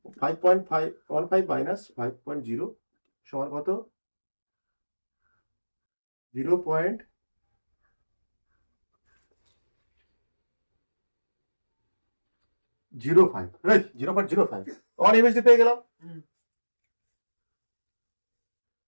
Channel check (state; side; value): inverted; both; correlation -1.00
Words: 5.15 মাইনাস 5.0 সমান কত 0.05। 0.05 1 এমএসডি পেয়ে গেলাম।